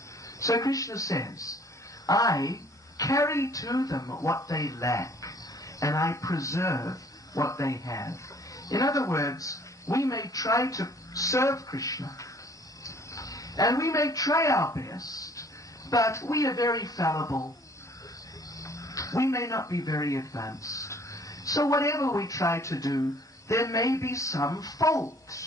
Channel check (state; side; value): normal; both; correlation 0.57